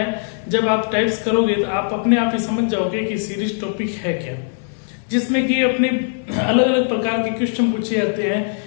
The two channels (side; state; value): right; silent; 64 dB below the other